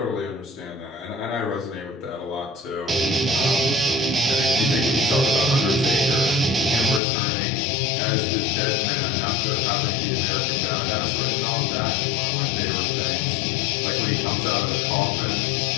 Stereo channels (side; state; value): right; drops out; at 7.0 s